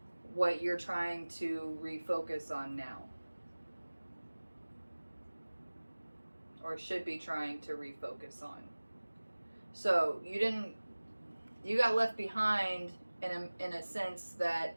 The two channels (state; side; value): inverted; both; correlation -1.00